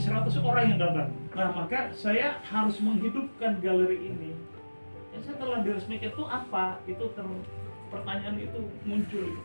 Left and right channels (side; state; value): both; inverted; correlation -1.00